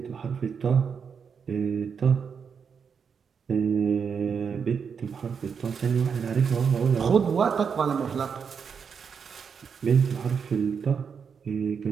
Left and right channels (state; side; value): quieter; left; 6.4 dB